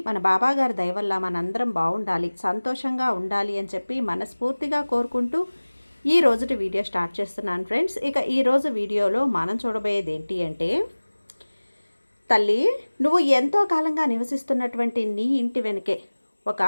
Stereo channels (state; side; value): inverted; both; correlation -1.00